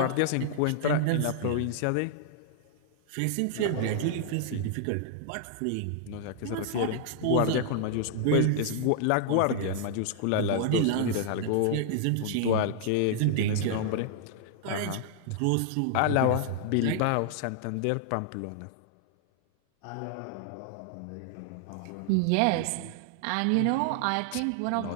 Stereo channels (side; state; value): both; different; correlation -0.01